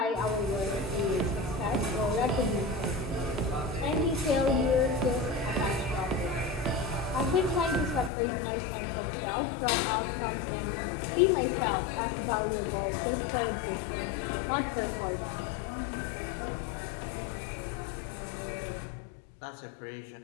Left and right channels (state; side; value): drops out; right; at 8.1 s